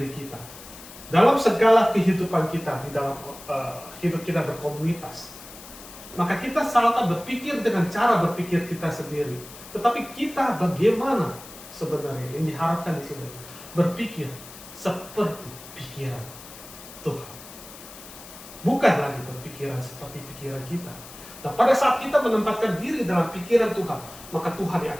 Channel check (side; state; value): left; noise; hiss, 16 dB below the sound